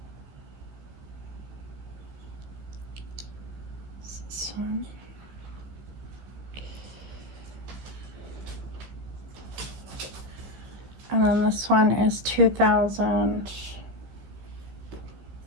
This one. And then this one is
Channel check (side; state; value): left; late; 15 ms